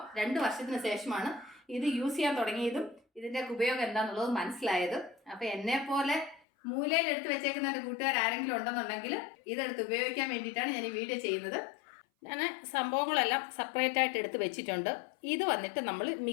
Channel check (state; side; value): drops out; right; at 6.4 s